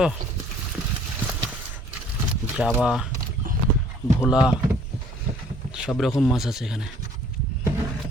জাবা, ভোলা, সব রকম মাছ আছে এখানে।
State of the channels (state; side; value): normal; both; correlation 0.57